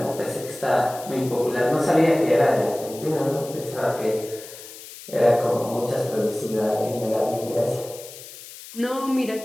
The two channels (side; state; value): left; noise; hiss, 15 dB below the sound